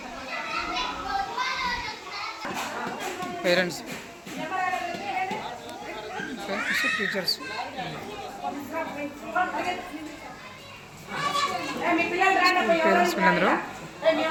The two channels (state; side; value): identical; both; correlation 1.00